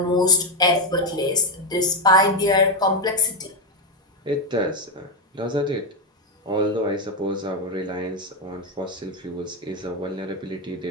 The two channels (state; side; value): normal; both; correlation 0.09